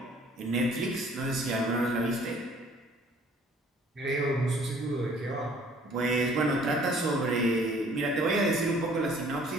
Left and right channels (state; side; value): normal; both; correlation 0.56